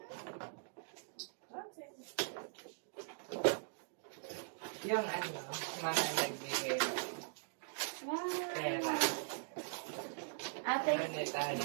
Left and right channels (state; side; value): silent; left; digital silence